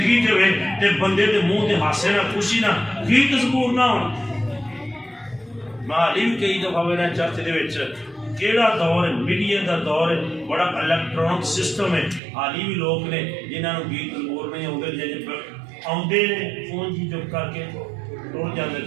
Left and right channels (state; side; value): drops out; left; at 12.2 s